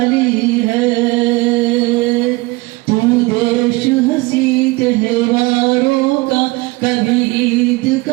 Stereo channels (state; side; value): quieter; left; 22.8 dB